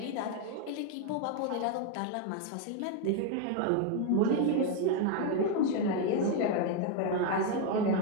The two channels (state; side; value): different; both; correlation 0.01